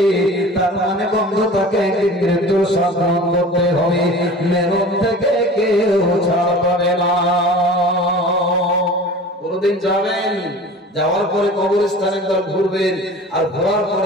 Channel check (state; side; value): normal; both; correlation 0.40